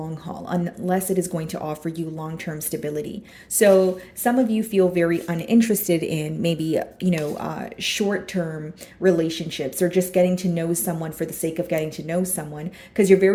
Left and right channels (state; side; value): identical; both; correlation 1.00